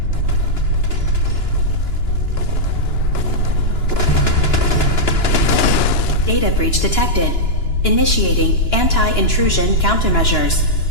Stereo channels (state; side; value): late; right; 2.9 ms